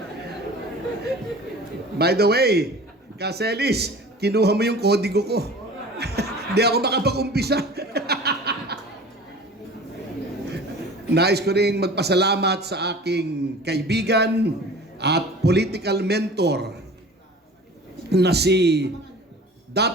By the way, Kaselis, kinuha mo yung kodigo ko. Hindi ako makapag-umpisa. Nais ko ring magpasalamat sa aking kaibigan at political mentor na si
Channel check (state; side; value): normal; both; correlation 0.41